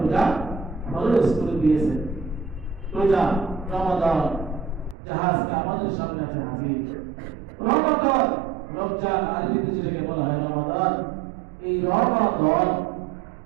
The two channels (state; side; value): drops out; left; at 5.0 s